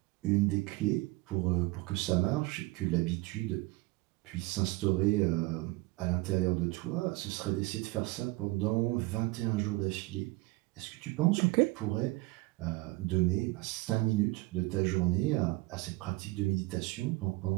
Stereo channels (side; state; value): left; quieter; 21.8 dB